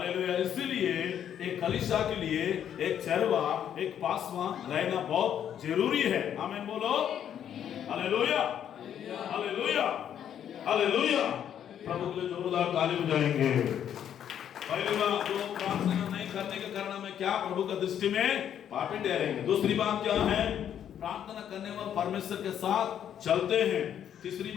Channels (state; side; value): quieter; right; 9.6 dB